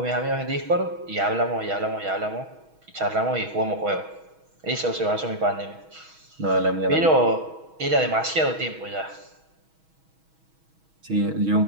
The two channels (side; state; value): left; late; 6.2 ms